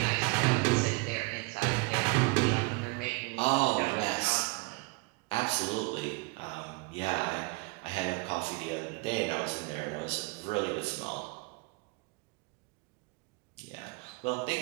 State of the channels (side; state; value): left; quieter; 27.2 dB